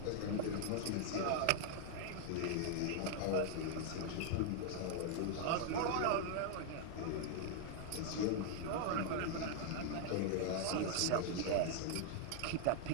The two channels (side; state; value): both; different; correlation 0.00